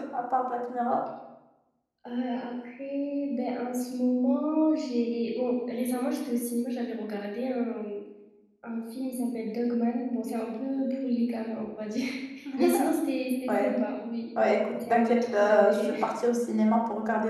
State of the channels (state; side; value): identical; both; correlation 1.00